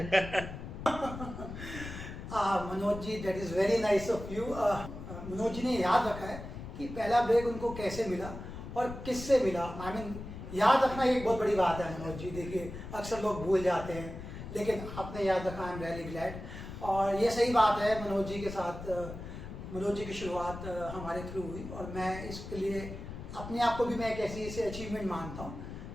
Manoj ji, that is very nice of you. Manoj ji ने याद रखा है कि पहला ब्रेक उनको कैसे मिला और किससे मिला। याद रखना एक बहुत बड़ी बात है मनोज जी। देखिए, अक्सर लोग भूल जाते हैं, लेकिन आपने याद रखा, आई एम वेरी ग्लैड। और ये सही बात है, मनोज जी के साथ, मनोज जी की शुरुआत हमारे थ्रू हुई और मैं इसके लिए अपने आप को भी मैं एक ऐसी से अचीवमेंट मानता हूँ।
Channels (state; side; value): noise; left; rumble, 10 dB below the sound